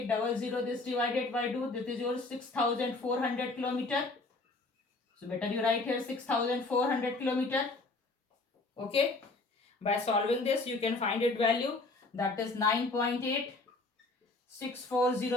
This divided by 2. This is your 6400 kilometer. So better you write here 6400 kilometer. Okay. By solving this, you can find its value. That is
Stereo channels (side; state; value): right; quieter; 3.3 dB